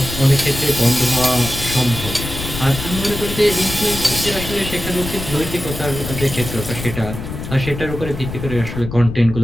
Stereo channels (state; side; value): noise; left; rumble, 8 dB below the sound